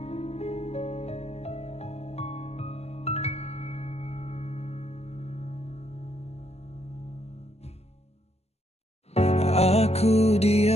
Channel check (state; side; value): late; right; 0.30 ms